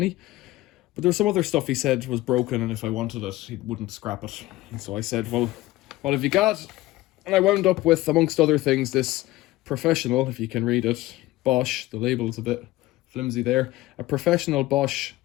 But there was some other stuff he said was broken, and if I wanted it, he wouldn't scrap it. And so I said, well, what have you got? And I wound up with, amongst other things, this Professional, if you can read it, Bosch, the label's a bit flimsy there, a Professional Bosch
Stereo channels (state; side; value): quieter; right; 17.6 dB